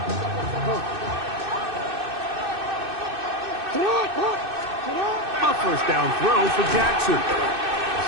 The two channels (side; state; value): left; late; 2.6 ms